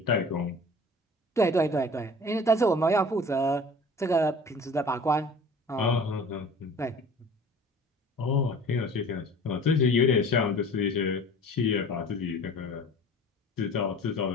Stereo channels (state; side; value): normal; both; correlation 0.44